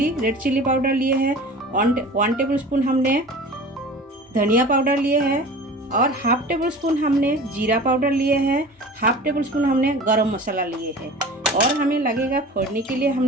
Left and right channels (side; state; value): both; normal; correlation 0.39